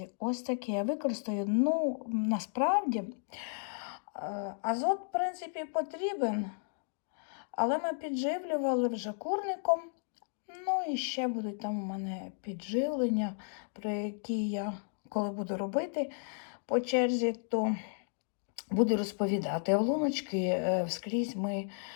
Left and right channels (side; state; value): right; silent; digital silence